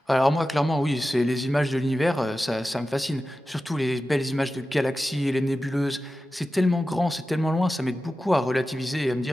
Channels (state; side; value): normal; both; correlation 0.93